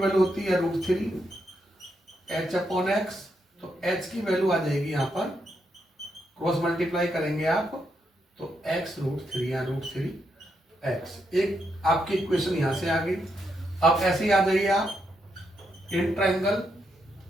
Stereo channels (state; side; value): normal; both; correlation 0.80